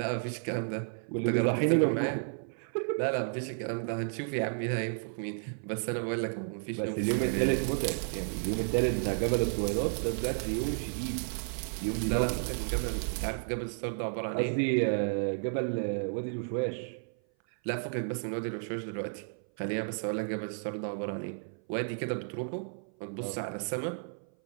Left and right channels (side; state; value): left; silent; 56 dB below the other